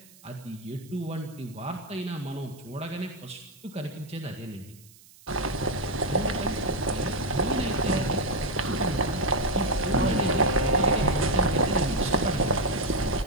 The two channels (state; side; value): noise; right; hiss, 24 dB below the sound